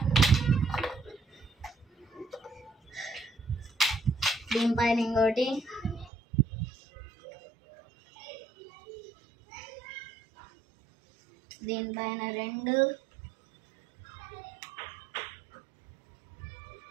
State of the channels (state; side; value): drops out; left; at 6.1 s